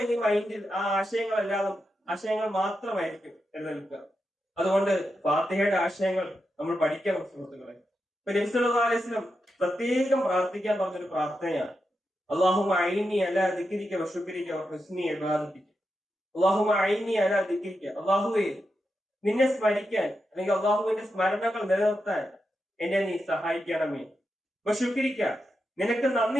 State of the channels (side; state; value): both; normal; correlation 0.87